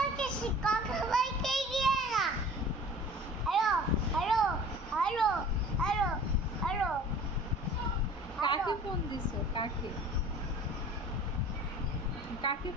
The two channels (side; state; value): both; normal; correlation 0.44